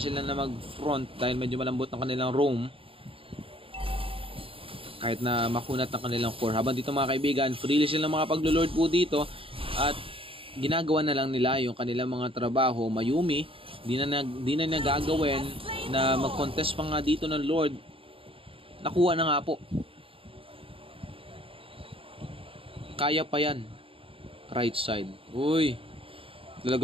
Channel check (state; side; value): late; left; 0.26 ms